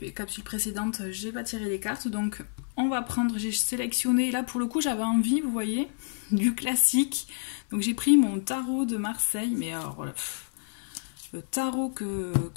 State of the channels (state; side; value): silent; right; 59 dB below the other